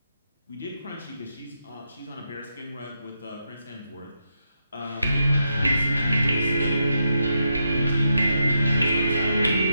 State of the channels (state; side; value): inverted; both; correlation -0.83